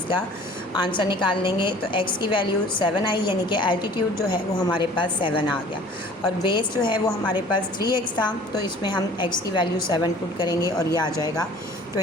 आंसर निकाल लेंगे। तो x की वैल्यू 7 आई यानी कि एल्टीट्यूड जो है वो हमारे पास 7 आ गया और बेस जो है वो हमारे पास 3x था तो इसमें हम x की वैल्यू 7 पुट करेंगे और ये आ जाएगा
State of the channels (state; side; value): normal; both; correlation 0.49